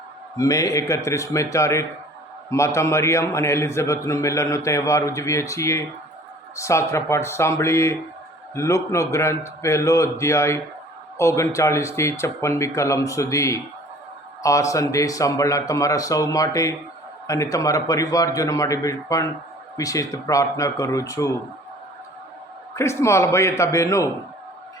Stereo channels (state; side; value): normal; both; correlation 0.49